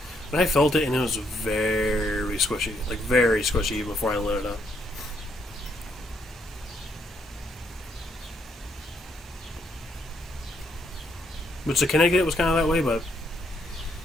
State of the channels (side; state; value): both; normal; correlation 0.74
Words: And I felt it, and it was very squishy, even before I lit it up. Which the Connecticut was kind of that way, but